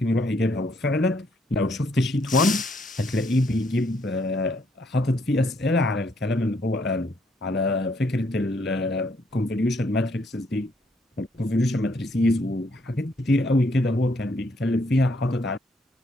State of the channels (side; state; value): both; normal; correlation 0.71